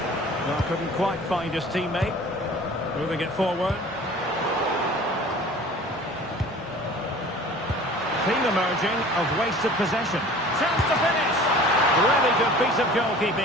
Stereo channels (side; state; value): both; normal; correlation 0.45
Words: Well, couldn't quite find his teammate. Moving it forward. Theme emerging of wasted possession. Chance to finish. Really good piece of